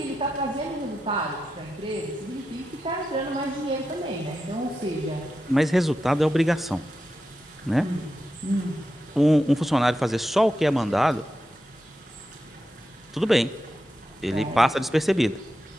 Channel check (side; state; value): both; normal; correlation 0.89